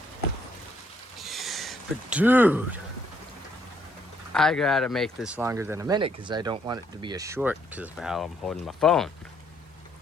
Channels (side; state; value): both; normal; correlation 0.69